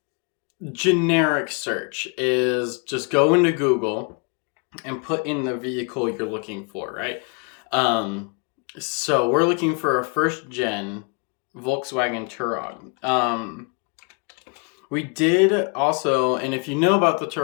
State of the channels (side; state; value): right; quieter; 34.4 dB